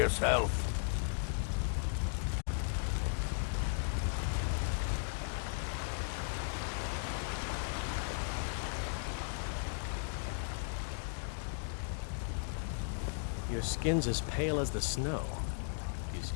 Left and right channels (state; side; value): silent; right; digital silence